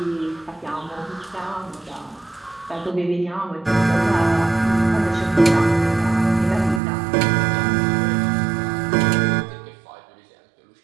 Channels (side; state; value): left; drops out; at 6.8 s